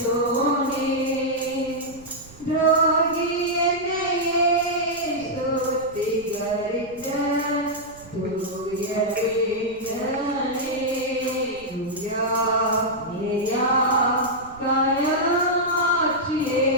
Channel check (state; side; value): noise; right; rumble, 21 dB below the sound